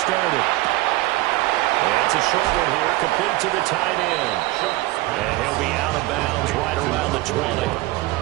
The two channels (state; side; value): quieter; left; 18.7 dB